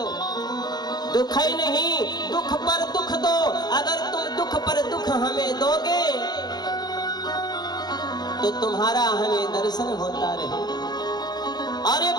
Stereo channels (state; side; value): late; right; 0.20 ms